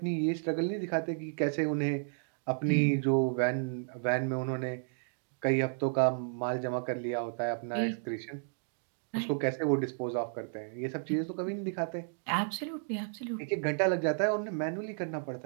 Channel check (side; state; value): left; silent; digital silence